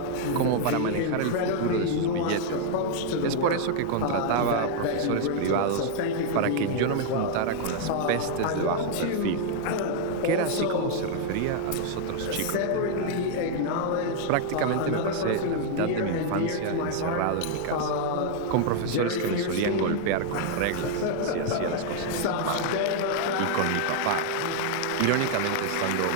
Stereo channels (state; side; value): different; both; correlation 0.00